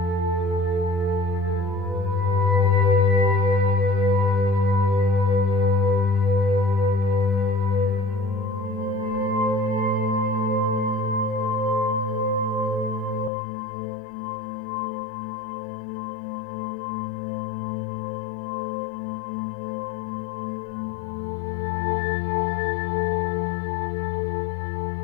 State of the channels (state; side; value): drops out; right; at 13.3 s